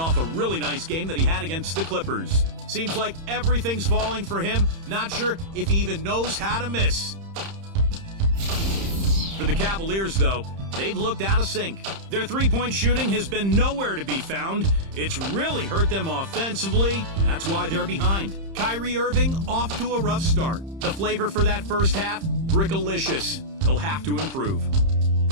a really nice game that he had against the Clippers. Seems like everything's falling for him. Not sure if he even knows how to miss. For the Cavaliers, though, they've looked out of sync. Their three-point shooting has been nowhere to be found. It's really hurt them offensively. That's why they're behind. Kyrie Irving off to a rough start. The flavor for that first half, brickalicious. He'll have to improve.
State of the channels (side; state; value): left; late; 30 ms